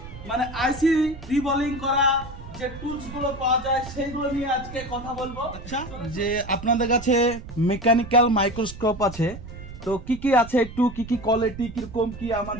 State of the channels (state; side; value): noise; right; rumble, 13 dB below the sound